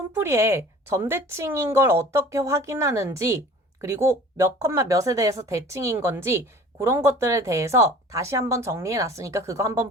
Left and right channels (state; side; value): normal; both; correlation 0.45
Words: 점대칭인 걸 어떻게 확인하는지 그리고 몇 컴마 몇에 대해서 대칭인 건지 그런 것들에 대해서 다시 한번 정리해놨으니까 그거 한번